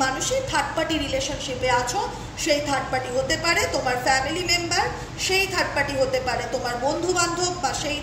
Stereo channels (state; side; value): identical; both; correlation 1.00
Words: মানুষই থার্ড পার্টি রিলেশনশিপে আছো। সেই থার্ড পার্টি হতে পারে তোমার ফ্যামিলি মেম্বার, সেই থার্ড পার্টি হতে পারে তোমার বন্ধু বান্ধব, বা সেই